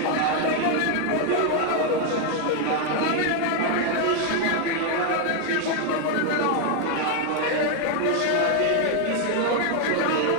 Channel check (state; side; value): different; both; correlation 0.01